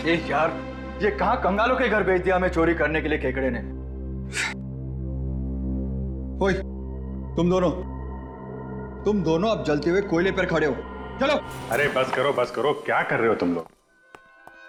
यार, ये कहाँ कंगालों के घर भेज दिया हमें चोरी करने के लिए केकड़े ने। ओए, तुम दोनों अब जलते हुए कोयले पर खड़े हो। चलो। अरे बस करो, क्या कर रहे हो तुम लोग?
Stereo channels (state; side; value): identical; both; correlation 1.00